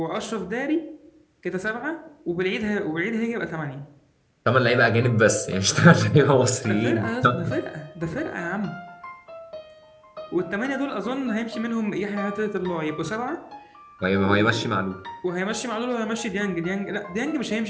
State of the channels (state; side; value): identical; both; correlation 1.00